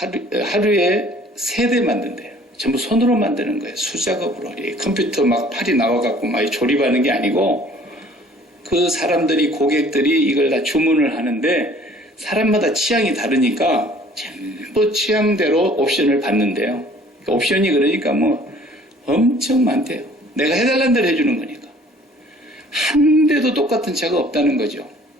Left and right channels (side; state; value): both; normal; correlation 0.53